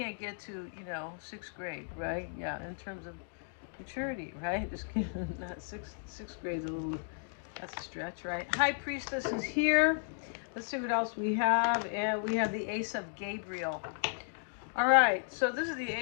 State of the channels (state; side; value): silent; right; digital silence